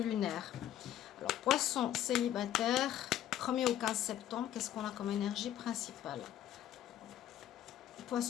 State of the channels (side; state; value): right; quieter; 11.6 dB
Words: Alors, poisson célibataire, 1er au 15 septembre, qu'est-ce qu'on a comme énergie principale?